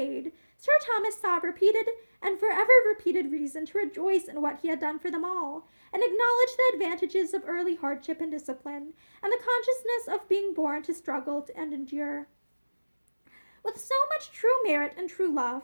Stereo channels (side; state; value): both; inverted; correlation -1.00